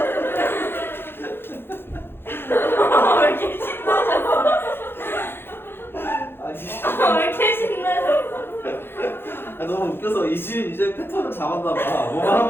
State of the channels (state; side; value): late; right; 0.11 ms